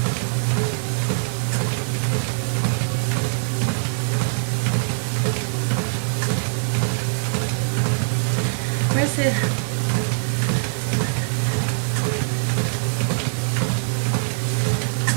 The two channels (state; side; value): silent; left; digital silence